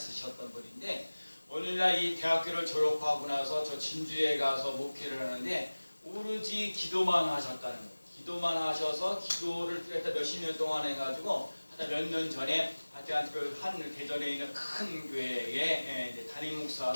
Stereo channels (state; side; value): inverted; both; correlation -1.00